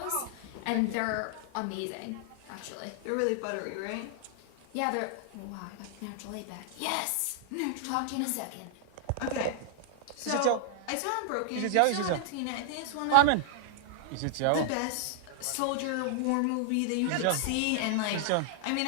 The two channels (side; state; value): both; different; correlation -0.01